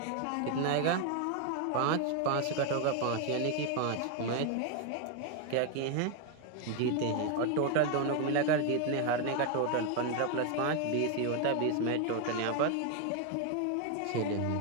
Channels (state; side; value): different; both; correlation 0.01